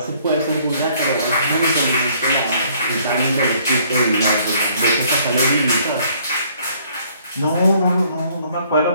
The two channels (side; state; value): both; inverted; correlation -0.62